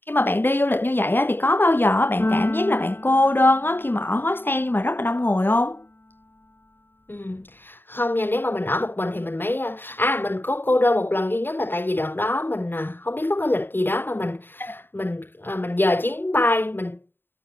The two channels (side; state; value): right; late; 0.098 ms